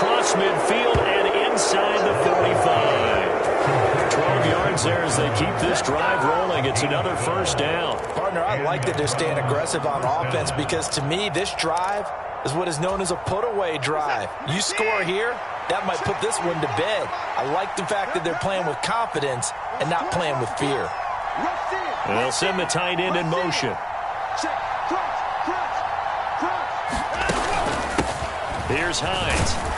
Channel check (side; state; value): both; identical; correlation 1.00